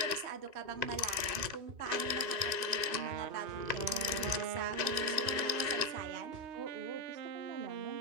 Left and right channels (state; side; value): late; left; 2.6 ms